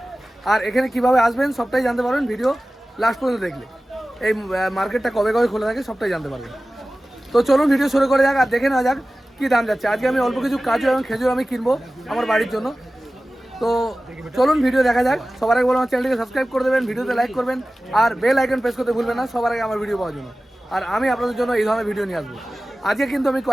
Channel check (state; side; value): normal; both; correlation 0.96